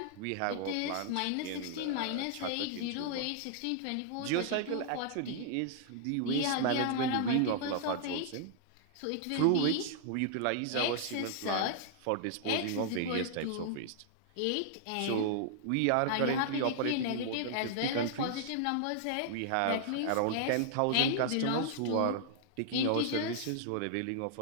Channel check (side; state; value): both; different; correlation -0.01